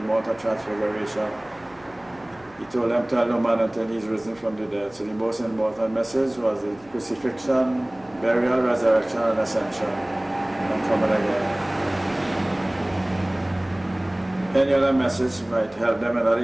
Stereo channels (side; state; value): right; noise; hum, 28 dB below the sound